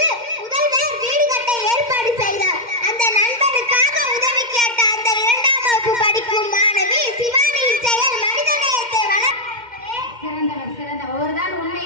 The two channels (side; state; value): left; late; 2.1 ms